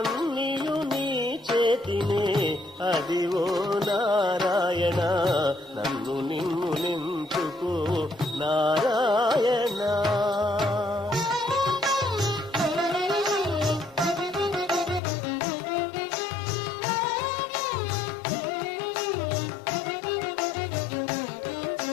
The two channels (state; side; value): drops out; right; at 15.0 s